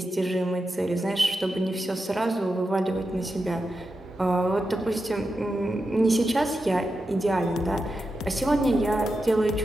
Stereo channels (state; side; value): normal; both; correlation 0.89